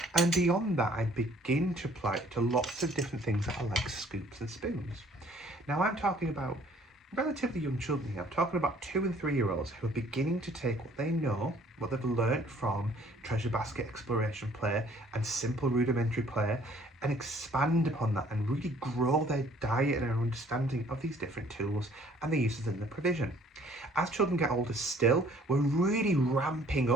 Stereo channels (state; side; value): normal; both; correlation 0.58